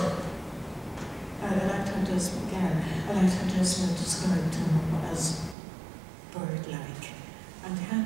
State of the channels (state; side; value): drops out; left; at 5.6 s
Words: I liked how Desmond described him as bird-like. And he had